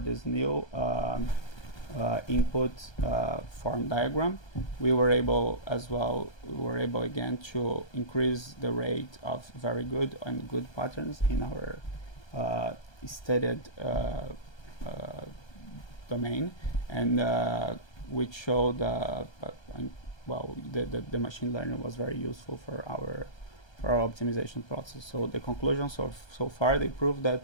this new input form diagram. We were able again to increase the rate of very good and good patterns in our studied domain, and which showed the machine learning was very useful for our optimization process. So the conclusion so far, they proved that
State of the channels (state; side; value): late; right; 1.3 ms